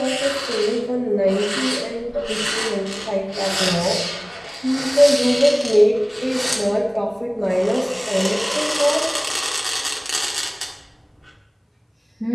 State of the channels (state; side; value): identical; both; correlation 1.00